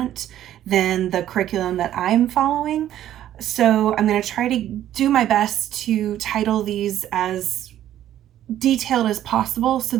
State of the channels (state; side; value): quieter; left; 12.0 dB